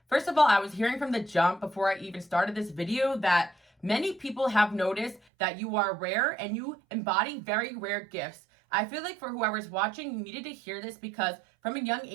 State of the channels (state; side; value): drops out; left; at 5.2 s